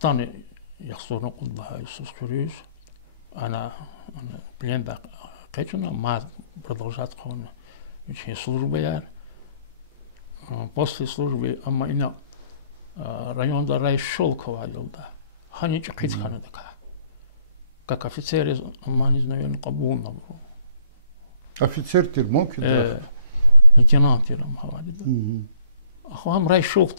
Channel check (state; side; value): inverted; both; correlation -0.62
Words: яхсурна куд Лагайсуз курюш, она пленда кечуна, ма продолжать хона, еще служба яр. После службы, ама ина районда Райшолкова елда. Хани чакит хана така. Как офицер из Аманис, наверное, Кабулна был. Офицер Тирмоки, да? Лейтенант Тирам Хавади, да. Ахуам